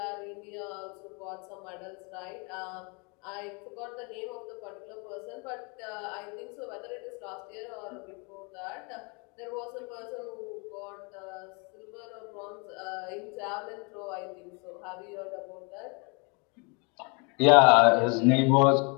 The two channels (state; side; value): quieter; right; 32.6 dB